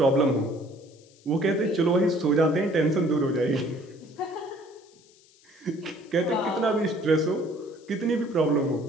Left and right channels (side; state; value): left; noise; hiss, 29 dB below the sound